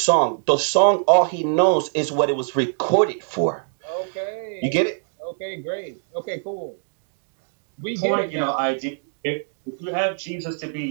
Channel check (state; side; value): silent; left; digital silence